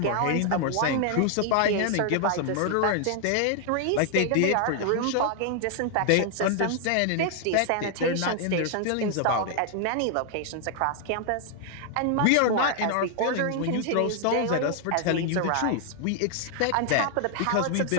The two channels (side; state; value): both; different; correlation 0.00